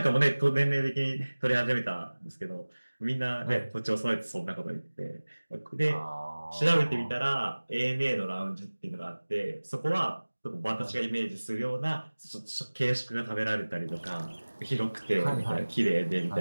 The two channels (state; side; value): inverted; both; correlation -1.00